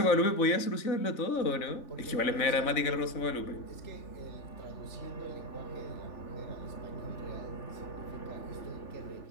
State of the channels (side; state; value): right; late; 3.4 ms